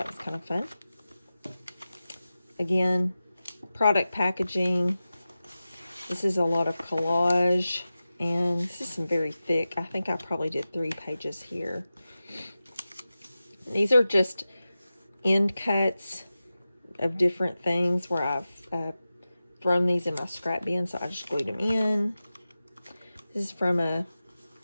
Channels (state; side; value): inverted; both; correlation -0.94